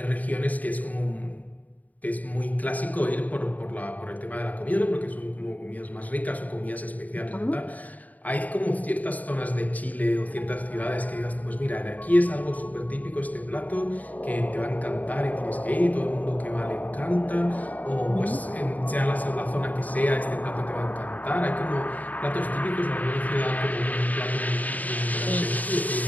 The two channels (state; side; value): late; right; 0.076 ms